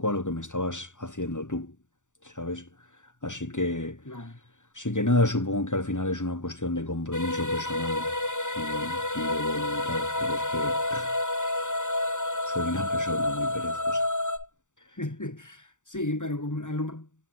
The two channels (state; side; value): late; right; 0.86 ms